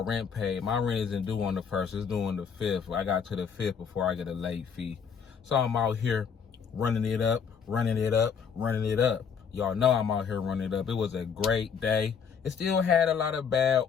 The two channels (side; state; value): right; quieter; 6.7 dB